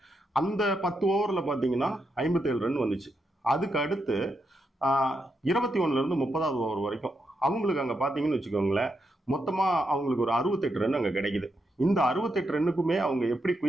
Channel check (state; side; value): normal; both; correlation 0.83